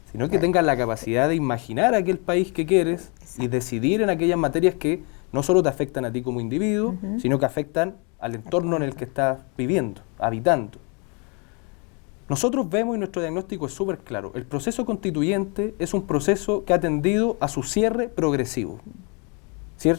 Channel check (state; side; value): quieter; right; 33.8 dB